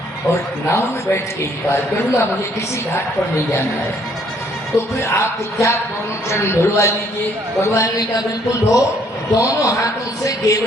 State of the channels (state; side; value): normal; both; correlation 0.64